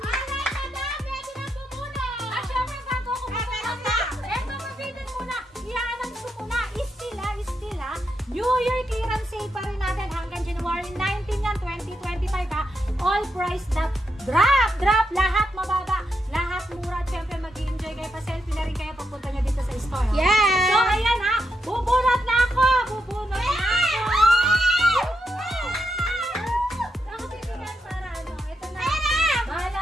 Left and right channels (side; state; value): both; normal; correlation 0.83